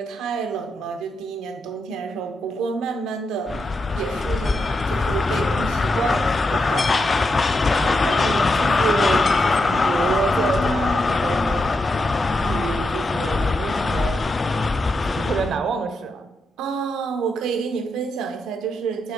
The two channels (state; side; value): normal; both; correlation 0.84